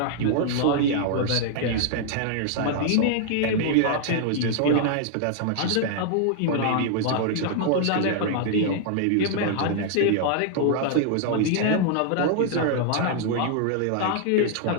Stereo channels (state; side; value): different; both; correlation -0.01